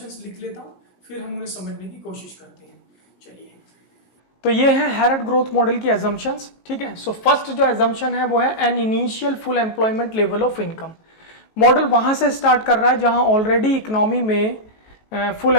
लिख लेता हूँ, फिर हम उन्हें समझने की कोशिश करते हैं। चलिए, तो ये है हैरड ग्रोथ मॉडल की assumptions। ठीक है, सो फर्स्ट जो assumption है वो है an initial full employment level of income. Model वहां से स्टार्ट कर रहा है जहां ऑलरेडी इकोनॉमी में फुल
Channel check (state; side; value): late; right; 18 ms